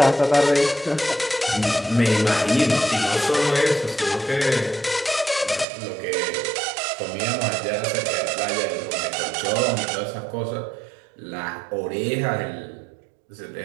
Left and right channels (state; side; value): drops out; left; at 5.7 s